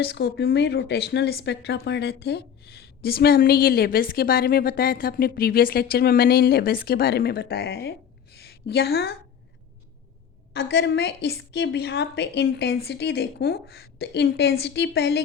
में रोटेशनल स्पेक्ट्रा पढ़ रहे थे, जिसमें हमने ये लेवल्स के बारे में बताया था। अपने प्रीवियस लेक्चर में मैंने इन लेवल्स के बारे में बताया है। यहाँ अगर मैं इसके बिहाफ पे इंटेंसिटी देखूं तो इंटेंसिटी पहले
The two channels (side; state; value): right; quieter; 8.1 dB